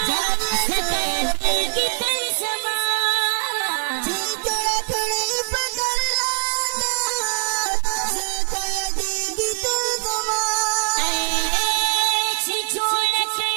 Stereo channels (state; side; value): silent; left; 64 dB below the other